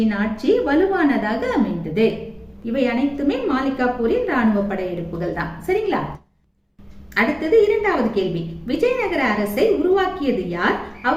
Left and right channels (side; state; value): both; identical; correlation 1.00